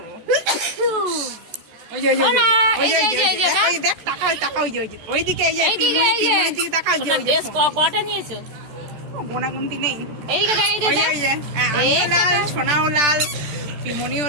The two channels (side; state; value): left; late; 14 ms